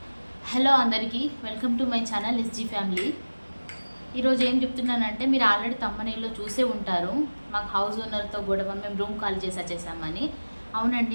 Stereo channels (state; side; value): inverted; both; correlation -1.00